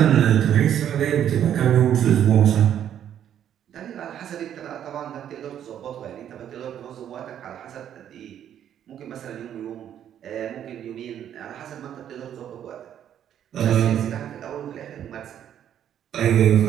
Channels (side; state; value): left; quieter; 10.0 dB